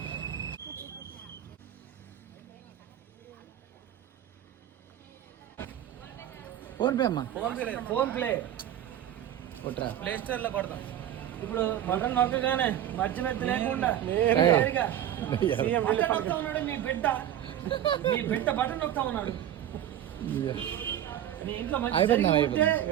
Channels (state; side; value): quieter; left; 11.3 dB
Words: ఫోన్ పే అమ్మా, ఫోన్ ప్లే ప్లే స్టోర్ లో కొడతాం. ఇప్పుడు బటన్ నొక్కగానే మధ్య లేకుండా నొక్తా ఉన్నాడు మీ బిడ్డ బటన్ నొక్తా ఉన్నాడు. మీ ఇంట్లో మంచి 25